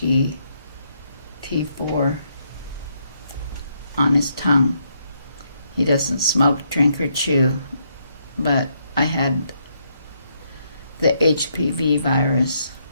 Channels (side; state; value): both; inverted; correlation -0.75